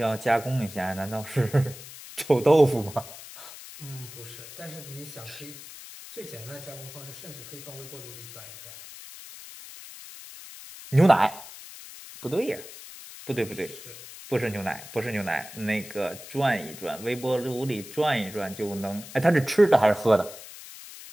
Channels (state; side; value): noise; left; hiss, 15 dB below the sound